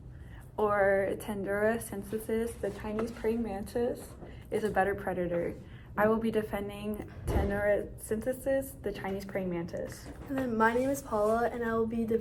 or Tendura synthesis, the Chinese praying mantis, is a better predator. I will be defending Tendura synthesis, the Chinese praying mantis. And then my name is Paula, and I will be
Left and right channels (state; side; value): identical; both; correlation 1.00